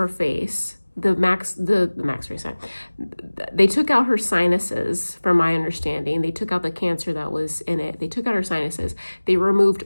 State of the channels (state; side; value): inverted; both; correlation -1.00